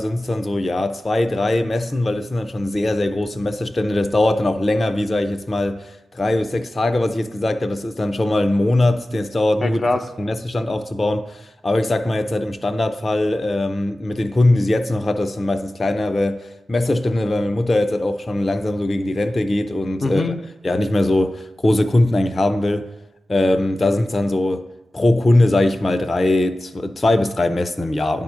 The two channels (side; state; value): both; normal; correlation 0.96